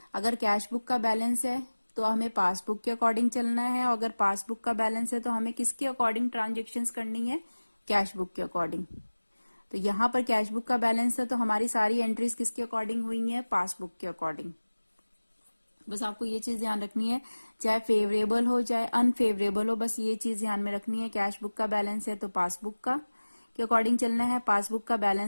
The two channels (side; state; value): both; inverted; correlation -1.00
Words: अगर कैश बुक का बैलेंस है तो हमें पासबुक के अकॉर्डिंग चलना है, और अगर पासबुक का बैलेंस है तो हमें किसके अकॉर्डिंग ट्रांजेक्शन्स करनी है, कैश बुक के अकॉर्डिंग। तो यहाँ पर कैश बुक का बैलेंस है तो हमारी सारी एंट्रीज किसके अकॉर्डिंग हुई है, पासबुक के अकॉर्डिंग। बस आपको ये चीज ध्यान रखनी है, चाहे फेवरेबल हो चाहे अनफेवरेबल हो, बस ये चीज ध्यान में रखनी है। कैश बुक का बैलेंस है तो पासबुक का के अकॉर्डिंग चलना है, पासबुक का